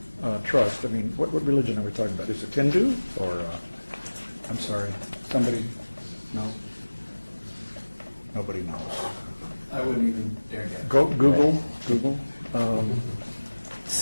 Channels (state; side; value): inverted; both; correlation -1.00